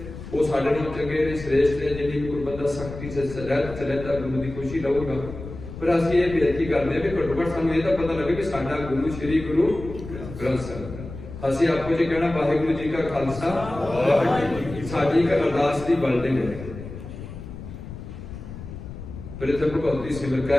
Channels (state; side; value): noise; left; rumble, 11 dB below the sound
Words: ਉਹ ਸਾਡੇ ਨਾਲ ਚੰਗੇ ਨੇ, ਸ੍ਰੇਸ਼ਟ ਨੇ। ਜਿੰਨੀ ਕੋਈ ਬੰਦਾ ਸਖਤੀ ਸੇ ਰਹਿਤ ਚਲੇ ਤਾਂ ਗੁਰੂ ਦੀ ਖੁਸ਼ੀ ਲਊਗਾ। ਪਰ ਅਸੀਂ ਇਹ ਬੇਨਤੀ ਕਰਦੇ ਹਾਂ ਵੀ ਘੱਟੋ ਘੱਟ ਸਾਨੂੰ ਇਹ ਤਾਂ ਪਤਾ ਲੱਗੇ ਕਿ ਸਾਡਾ ਗੁਰੂ ਸ਼੍ਰੀ ਗੁਰੂ ਗ੍ਰੰਥ ਸਾਹਿਬ। ਅਸੀਂ ਆਪੋ ਜੀ ਕਹਿਣਾ ਵਾਹਿਗੁਰੂ ਜੀ ਕਾ ਖਾਲਸਾ, ਸਾਡੀ ਇੱਕ ਅਰਦਾਸ ਦੀ ਬਿਲਡਿੰਗ ਹੈ। ਪ੍ਰਥਮ ਭਗਤੀ ਸਿਮਰ